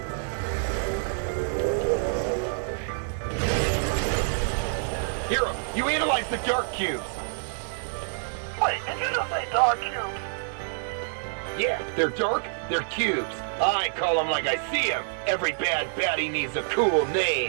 Hero, you analyzed the dark cubes. Wait, did you just say dark cubes? Yeah, they're dark, they're cubes. I call them like I see them. Every bad baddie needs a cool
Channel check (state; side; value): silent; left; digital silence